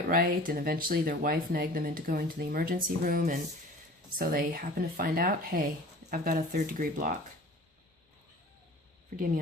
right, and eventually their wife nagged them into going to the emergency room, and so they happened to find out, hey, I've got a third degree block. Forgive me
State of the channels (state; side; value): normal; both; correlation 0.43